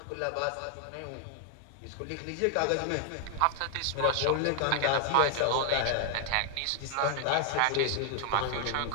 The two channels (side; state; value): both; different; correlation 0.00